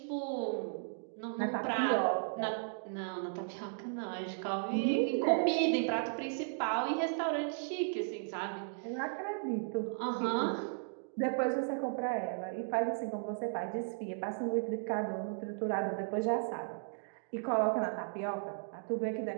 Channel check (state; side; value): silent; left; digital silence